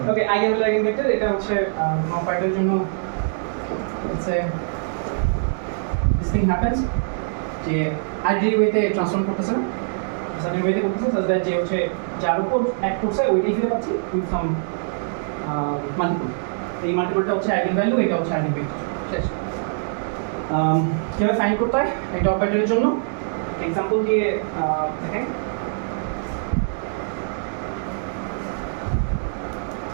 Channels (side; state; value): left; silent; digital silence